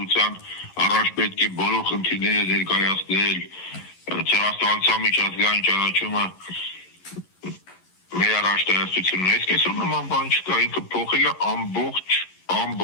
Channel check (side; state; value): right; late; 11 ms